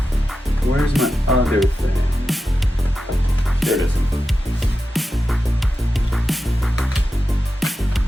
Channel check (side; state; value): both; normal; correlation 0.91